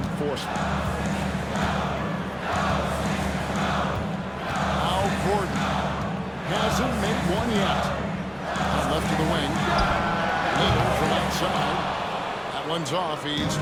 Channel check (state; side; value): identical; both; correlation 1.00